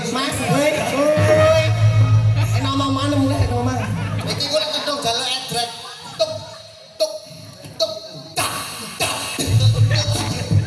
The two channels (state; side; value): identical; both; correlation 1.00